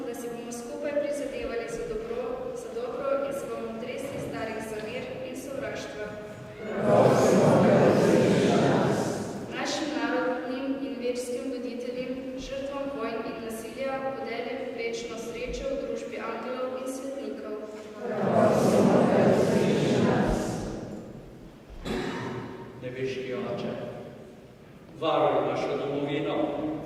da si bomo skupaj prizadevali za dobro in se bomo tresli starih zavir in sovraštva. Našim narodnim in verskim voditeljem, žrtvam vojn in nasilja podeli večno srečo v družbi angelov in svetnikov. Nebeški Oče, varuj našo domovino,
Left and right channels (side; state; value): both; identical; correlation 1.00